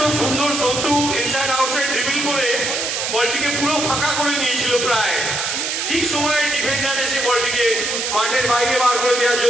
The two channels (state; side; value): noise; right; hiss, 1 dB below the sound